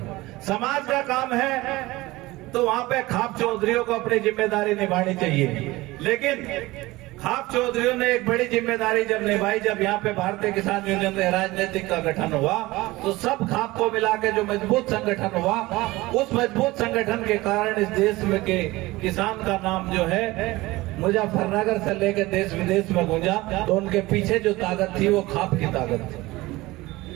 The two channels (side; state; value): left; quieter; 19.9 dB